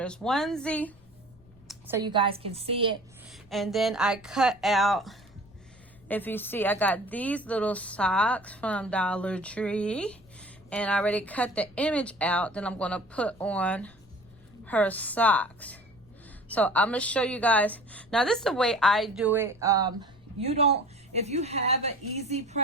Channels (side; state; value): left; noise; rumble, 27 dB below the sound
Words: onesie so you guys can see it. And then I cut out, if you see, I got these little socks from Dollar Tree, and I already cut the image out. Then I'm gonna put on her socks. So I'm gonna show you guys. Now this is the way I do it. If you have an